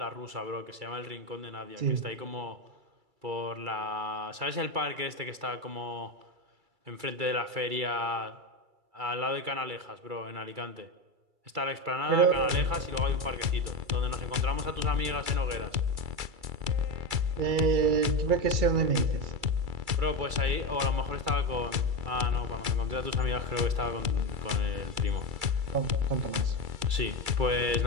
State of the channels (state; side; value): late; left; 2.3 ms